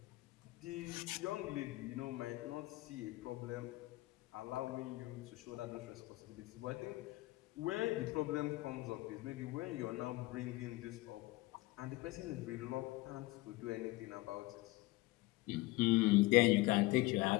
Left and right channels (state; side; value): quieter; right; 20.0 dB